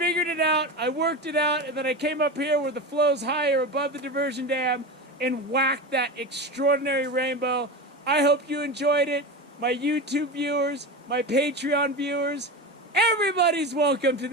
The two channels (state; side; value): normal; both; correlation 0.24